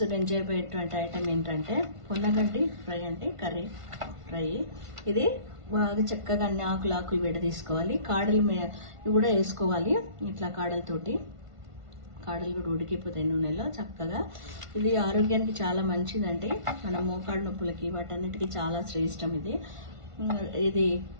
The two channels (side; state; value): left; late; 1.5 ms